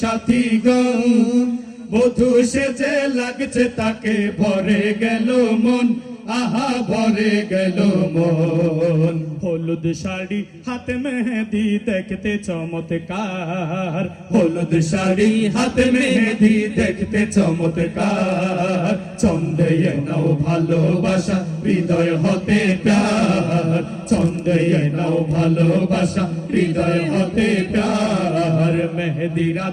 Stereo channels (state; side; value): identical; both; correlation 1.00